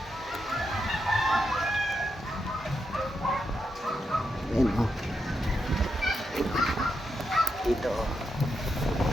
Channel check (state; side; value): normal; both; correlation 0.84